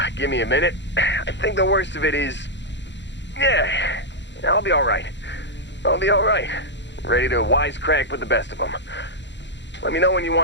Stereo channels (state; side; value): late; right; 0.52 ms